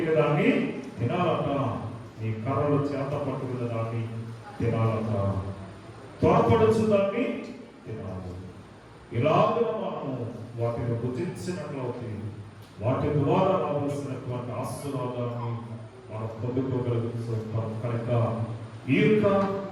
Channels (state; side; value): identical; both; correlation 1.00